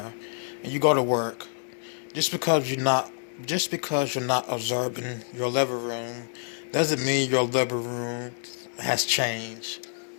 and you go to work, just because you're not observing your living room doesn't mean your living room has changed.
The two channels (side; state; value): right; silent; digital silence